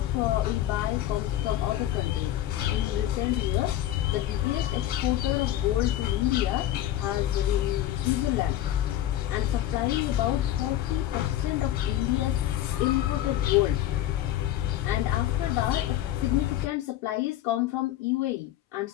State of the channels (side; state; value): right; quieter; 13.0 dB